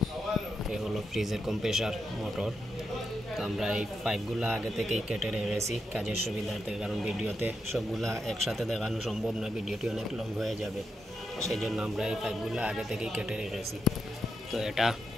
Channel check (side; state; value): both; normal; correlation 0.84